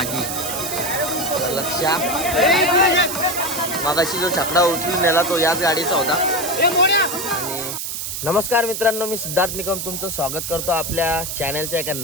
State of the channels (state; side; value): noise; right; hiss, 5 dB below the sound